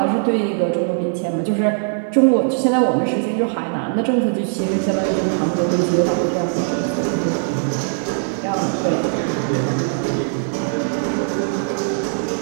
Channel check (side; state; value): left; silent; 66 dB below the other